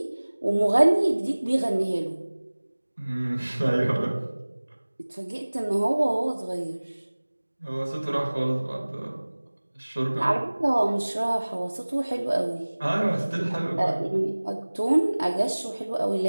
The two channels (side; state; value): both; inverted; correlation -1.00